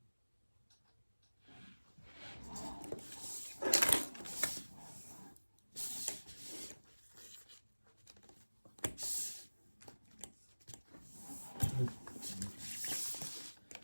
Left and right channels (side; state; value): both; inverted; correlation -1.00